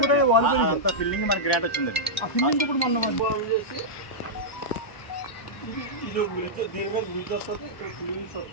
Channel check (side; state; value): right; late; 1.0 ms